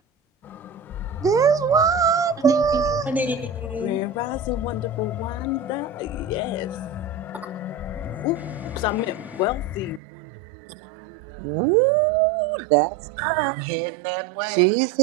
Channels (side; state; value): left; drops out; at 10.0 s